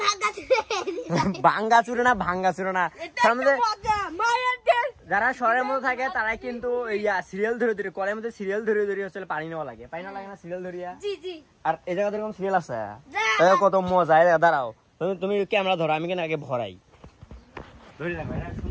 ভাঙা চুরে। ভাঙ্গা চুরে না, ভাঙ্গা চুরে না। এটা মজা মায়ের দেশ। যারা শহরের মধ্যে থাকে তারাই কিন্তু সিরিয়াল ধরে ধরে কলের মধ্যে সিরিয়াল ধরে ধরে হচ্ছে পানি নেওয়া লাগে, পানি নেওয়া লাগে না সিরিয়াল ধরিয়া? জি জি। আর এই জায়গাতে এরকম সিরিয়াল আছে, কত মজা। দাঁড়াও, তুমি ক্যামেরা ধরো, আমি কেন আগে ভরাই। ধরে রাখো, এটা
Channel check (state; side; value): identical; both; correlation 1.00